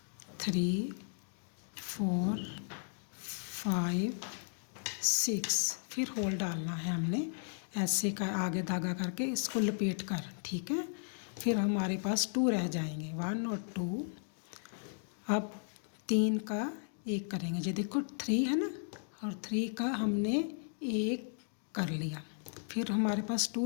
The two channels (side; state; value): right; silent; digital silence